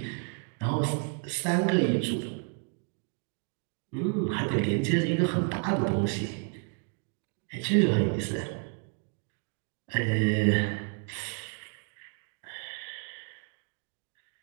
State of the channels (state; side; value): quieter; left; 39.9 dB